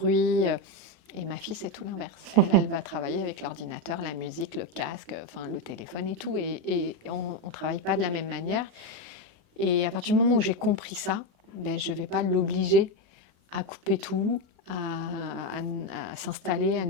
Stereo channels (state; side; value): late; left; 36 ms